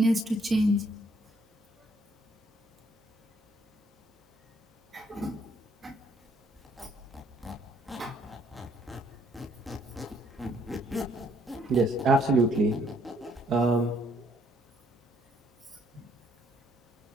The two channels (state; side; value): normal; both; correlation 0.67